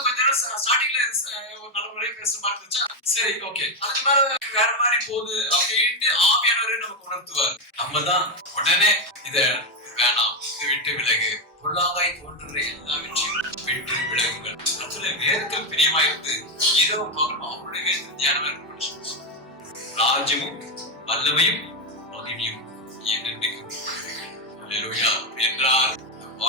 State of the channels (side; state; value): both; normal; correlation 0.07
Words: கொஞ்ச நேரம் ஸ்டார்டிங்ல ஒரு நல்ல முறையை பேசுற மாதிரி இருந்துச்சா, சரி ஓகே, அதுக்கு மேல வேற மாதிரி போகுது அப்படின்ட்டு ஆவியானவரே நமக்கு உணர்த்துவார். நம்ம தான் உடனே இத வேணாம், இதை விட்டு விலகு, பொல்லாங்காய் தோன்றுற எல்லாவற்றையும் விட்டு விலகுங்கள். அதுல வேதத்தில் பிரியமாயிருந்து இரவு பகலும் அவருடைய வேதத்தில் தியானம் இருக்கணும். ராஜ்யமும் வல்லமையும் மகிமையும் என்றென்றைக்கும் என்றார்.